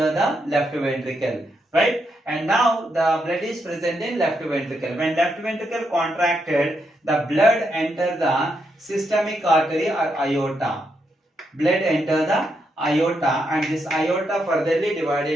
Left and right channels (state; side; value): normal; both; correlation 0.81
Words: the left ventricle, right? And now the blood is present in left ventricle. When left ventricle contracted, the blood enter the systemic artery or aorta. Blood enter the aorta, and this aorta furtherly